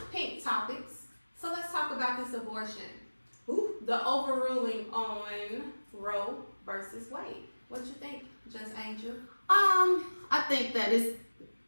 pink topics. So let's talk about this abortion. Ooh. The overruling on Roe versus Wade. What you think, Just Angel? I think that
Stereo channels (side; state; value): both; inverted; correlation -1.00